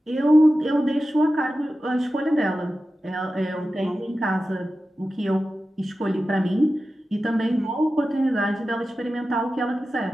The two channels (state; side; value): normal; both; correlation 0.94